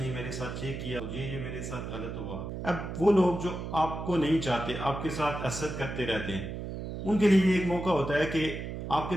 میرے ساتھ یہ کیا، یہ میرے ساتھ غلط ہوا۔ اب وہ لوگ جو آپ کو نہیں چاہتے، آپ کے ساتھ حسد کرتے رہتے ہیں، ان کے لیے ایک موقع ہوتا ہے کہ آپ کے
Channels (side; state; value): right; noise; hum, 6 dB below the sound